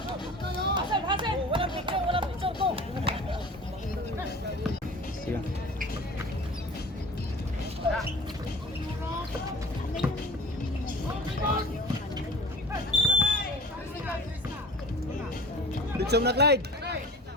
Sige. Bitsong na Clyde.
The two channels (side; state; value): both; normal; correlation 0.41